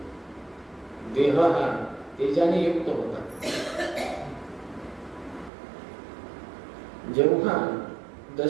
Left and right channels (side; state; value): left; drops out; at 5.5 s